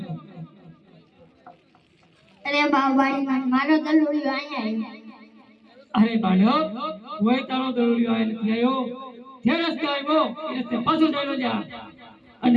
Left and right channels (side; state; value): both; identical; correlation 1.00